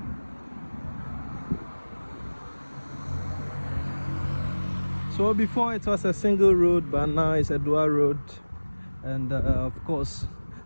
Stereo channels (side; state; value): both; inverted; correlation -1.00